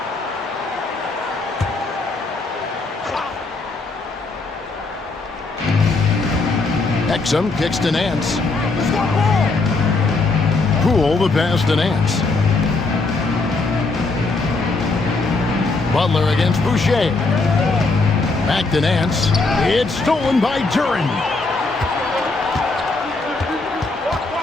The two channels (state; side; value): quieter; right; 3.6 dB